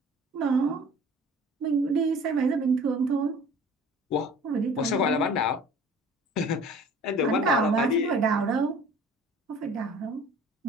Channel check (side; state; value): both; normal; correlation 0.47